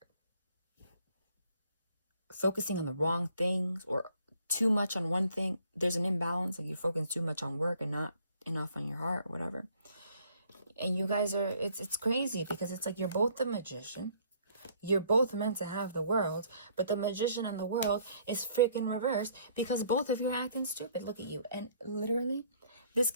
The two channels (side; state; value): both; inverted; correlation -0.61